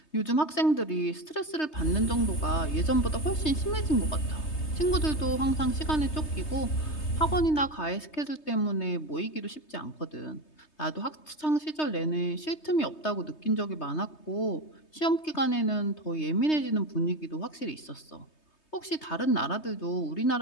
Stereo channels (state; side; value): late; right; 3.2 ms